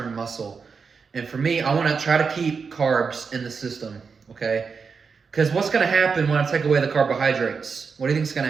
muscle. And for me, I want to try to keep carbs in the system, okay? Because what's going to happen when I take away the carbohydrates? What do you think is going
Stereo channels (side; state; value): left; quieter; 5.4 dB